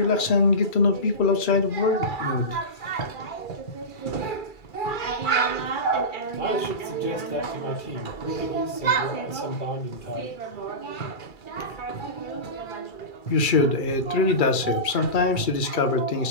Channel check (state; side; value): late; right; 2.3 ms